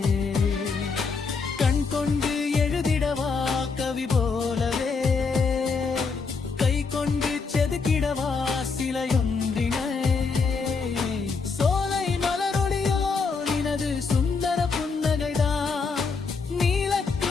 கண் கொண்டு எழுதிடவா கவி போலவே, கை கொண்டு செதுக்கிடவா சிலையொன்றினை, சோலை மலரொளியோ நினது சுந்தர புன்னகைதான்,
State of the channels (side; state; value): right; quieter; 4.8 dB